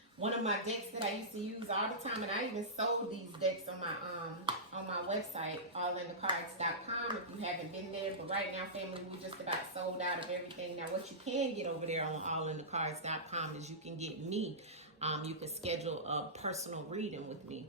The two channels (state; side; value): normal; both; correlation -0.17